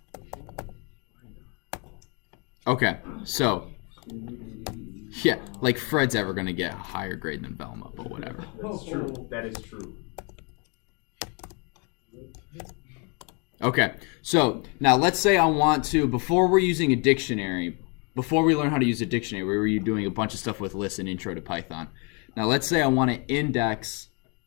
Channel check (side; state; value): right; quieter; 34.0 dB